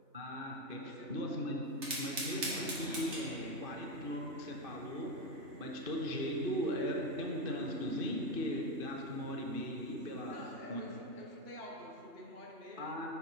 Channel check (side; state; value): left; late; 3.3 ms